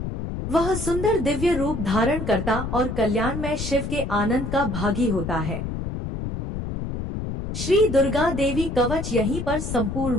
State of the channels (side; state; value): left; noise; rumble, 5 dB below the sound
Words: वह सुंदर दिव्य रूप धारण करता और कल्याणमय शिव के आनंद का भागी होता है। श्री दुर्गा देवी कवच यहीं पर संपूर्ण